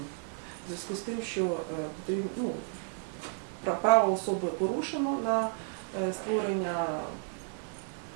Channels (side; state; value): left; silent; 56 dB below the other